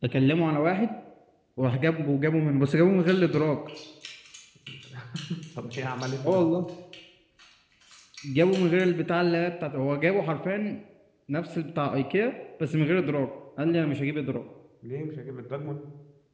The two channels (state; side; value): identical; both; correlation 1.00